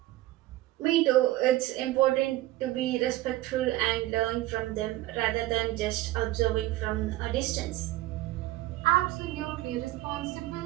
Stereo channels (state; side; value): quieter; left; 16.4 dB